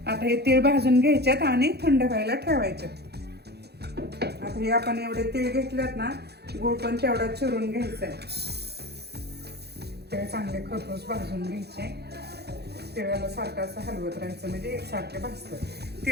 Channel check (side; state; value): left; late; 0.48 ms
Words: आता हे तीळ भाजून घ्यायच्यात आणि थंड व्हायला ठेवायचे. आता हे आपण एवढे तीळ घेतलेत ना, गूळ पण तेवढा चिरून घ्यायचा आहे. ते चांगले खरपूस भाजून घ्यायचे. तिळाला सारखं असं हलवत राहायचं म्हणजे एकसारखे भाजतात.